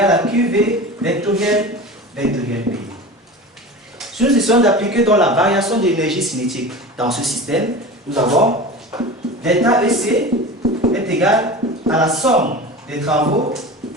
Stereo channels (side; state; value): both; normal; correlation 0.33